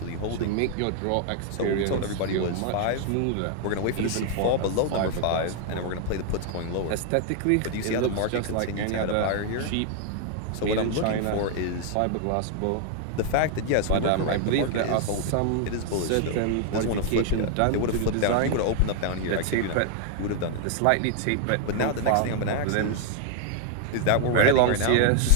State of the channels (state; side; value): different; both; correlation 0.00